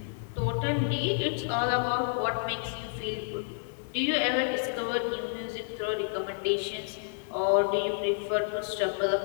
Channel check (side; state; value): right; silent; digital silence